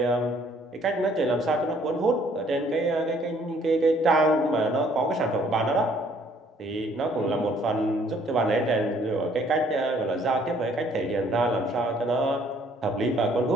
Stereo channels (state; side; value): normal; both; correlation 0.61